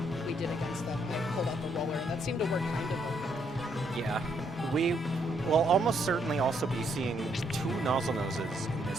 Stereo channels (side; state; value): both; normal; correlation 0.73